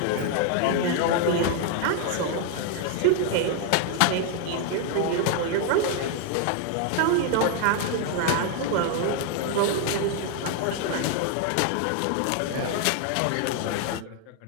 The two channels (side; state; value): both; different; correlation 0.00